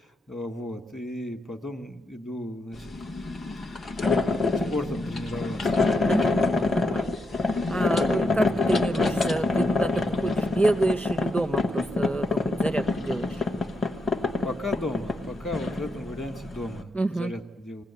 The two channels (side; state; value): both; normal; correlation 0.82